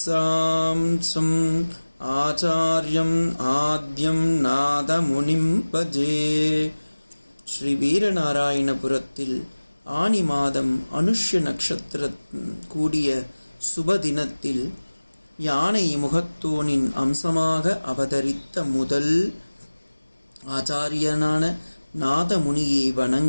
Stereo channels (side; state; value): both; inverted; correlation -1.00